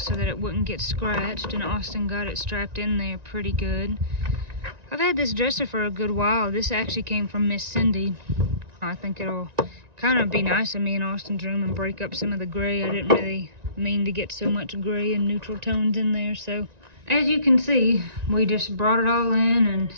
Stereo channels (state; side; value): late; left; 1.9 ms